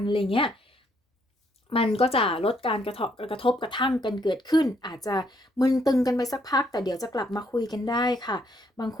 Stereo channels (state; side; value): normal; both; correlation 0.71